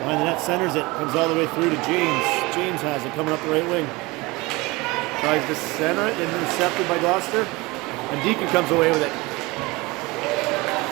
behind the net, centers it. Comes all the way through to James. James has it coming up the right wing. Tries to center it, intercepted by Gloucester. And Deacon comes away with it.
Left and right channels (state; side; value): quieter; left; 23.2 dB